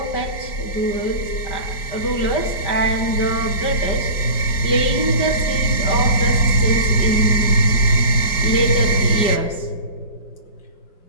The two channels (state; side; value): late; right; 5.1 ms